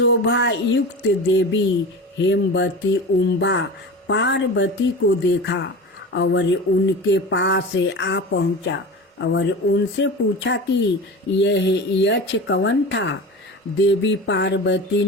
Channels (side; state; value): both; normal; correlation 0.31